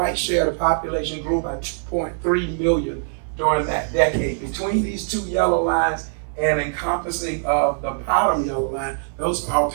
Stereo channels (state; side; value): silent; left; 59 dB below the other